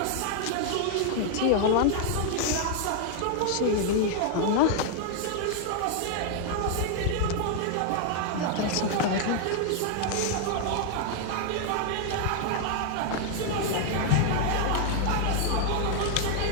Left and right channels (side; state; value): both; different; correlation 0.00